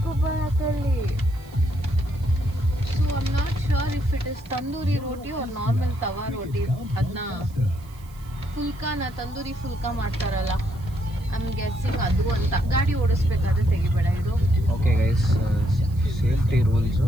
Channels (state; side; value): noise; right; hiss, 26 dB below the sound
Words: So I am not sure if it is tandoori roti or normal tawa roti. ಅದನ್ನ ಫುಲ್ಕಾನ ತಂದೂರಿ ಫುಲ್ಕಾ ಮಾಡ್ತಾರಲ್ಲ, ಐ ಆಮ್ ಗೆಸ್ಸಿಂಗ್ ಅದು ಅಂತ. ಗಾಡಿ ಓಡಿಸ್ಬೇಕಾದ್ರೆ ತೆಗಿಬೇಡ ಇದು. Okay guys, safety rules.